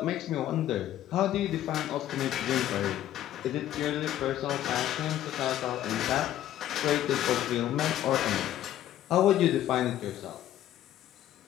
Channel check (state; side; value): quieter; right; 12.5 dB